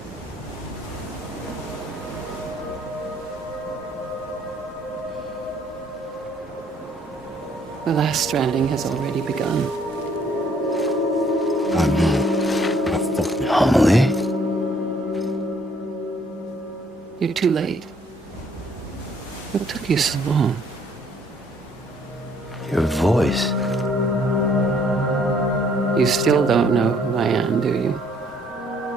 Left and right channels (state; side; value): normal; both; correlation 0.64